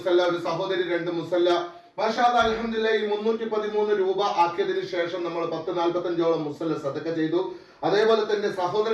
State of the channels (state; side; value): identical; both; correlation 1.00